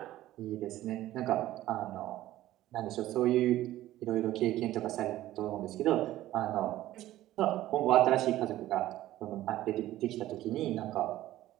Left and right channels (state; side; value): quieter; left; 14.8 dB